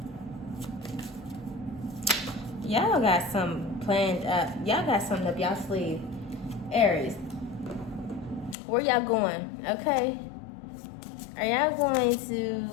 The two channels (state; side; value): drops out; right; at 8.6 s